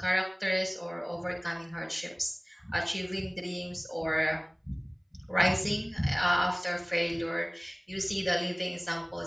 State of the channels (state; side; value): identical; both; correlation 1.00